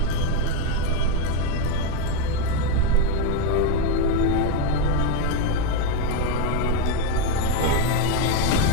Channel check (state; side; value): different; both; correlation 0.03